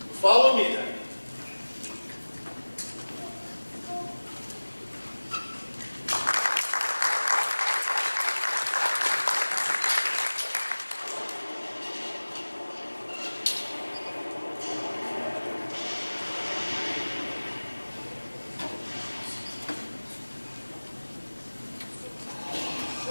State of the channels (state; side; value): inverted; both; correlation -1.00